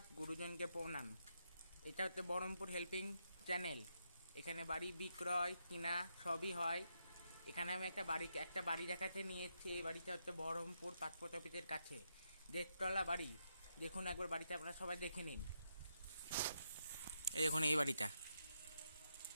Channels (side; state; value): both; inverted; correlation -0.81